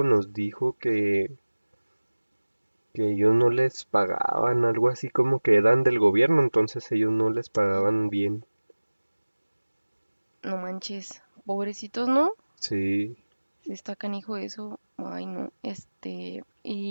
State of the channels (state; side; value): inverted; both; correlation -1.00